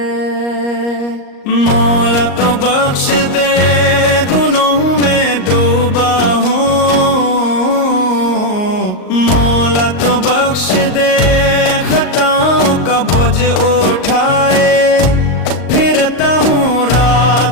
مولا تو بخش دے گناہوں میں ڈوبا ہوں مولا تو بخش دے خطاؤں کا بوجھ اٹھائے پھرتا ہوں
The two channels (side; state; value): right; late; 38 ms